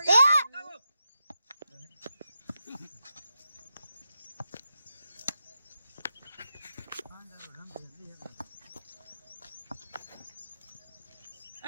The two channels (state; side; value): inverted; both; correlation -0.87